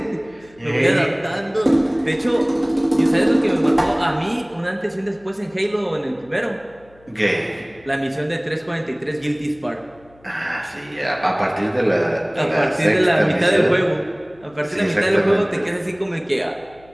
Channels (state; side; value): noise; left; hum, 28 dB below the sound